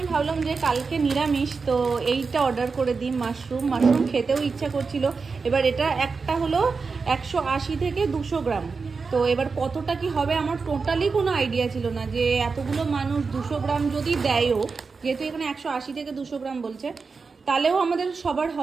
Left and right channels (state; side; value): quieter; left; 4.7 dB